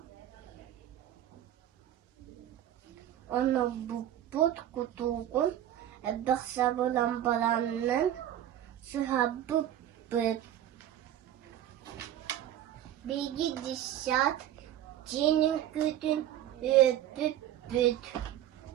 ona büpüt kutuğun ebek sabırlambalarının sıha büpüt. Bilgi dişat, cinin kütün öpüp büt.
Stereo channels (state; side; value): quieter; left; 11.8 dB